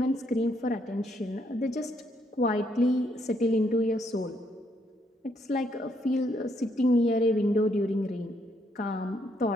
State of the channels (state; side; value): normal; both; correlation 0.73